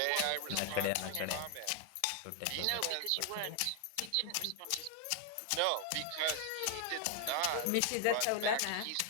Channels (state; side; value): different; both; correlation 0.00